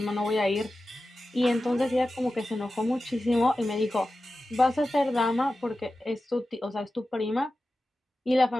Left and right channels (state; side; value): normal; both; correlation 0.94